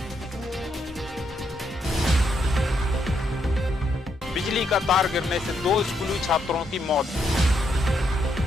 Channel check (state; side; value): normal; both; correlation 0.77